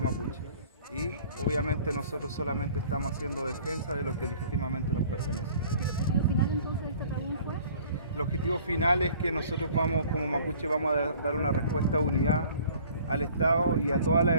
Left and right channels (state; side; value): inverted; both; correlation -0.51